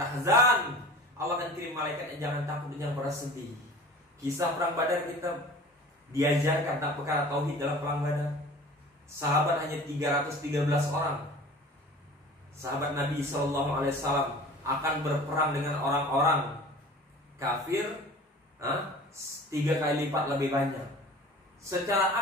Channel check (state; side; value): normal; both; correlation 0.42